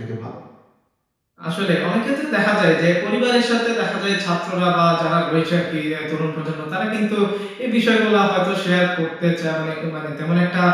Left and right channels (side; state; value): both; identical; correlation 1.00